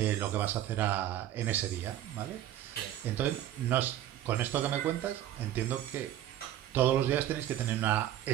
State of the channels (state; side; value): quieter; left; 12.3 dB